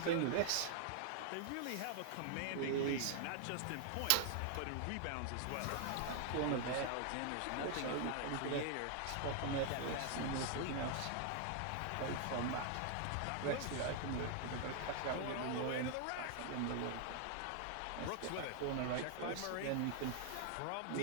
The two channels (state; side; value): different; both; correlation 0.00